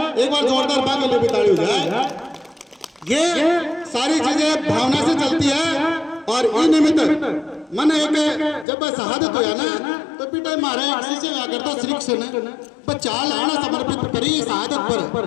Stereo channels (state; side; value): drops out; right; at 8.7 s